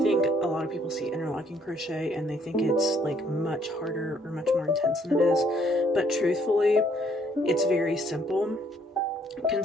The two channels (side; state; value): both; normal; correlation 0.66